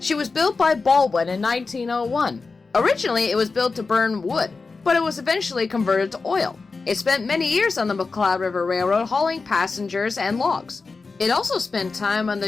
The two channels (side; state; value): right; quieter; 4.2 dB